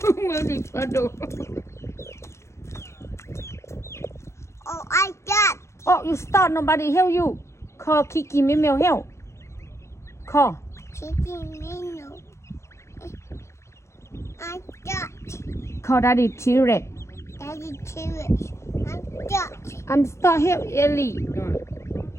没里快走。Oh, I got. Oh, you start. Nobody help you. Call Kiki Mimeo help. Call. Chicken menu. I got. Call Daddy T-Rex. Daddy T-Rex. I got. I'm start help Ellie.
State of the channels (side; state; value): right; late; 0.14 ms